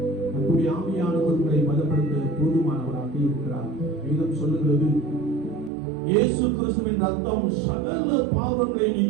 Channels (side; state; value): left; drops out; at 5.7 s